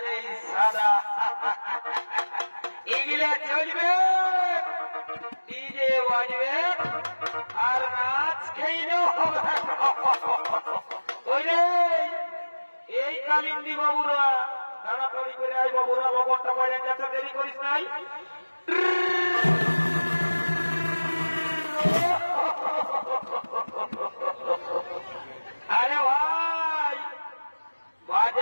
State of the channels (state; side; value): inverted; both; correlation -1.00